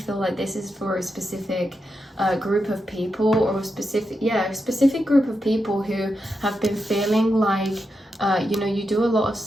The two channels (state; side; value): normal; both; correlation 0.87